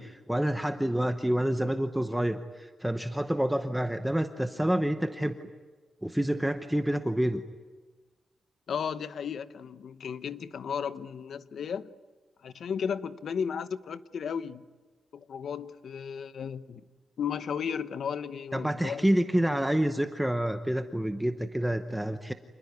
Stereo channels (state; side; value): normal; both; correlation 0.94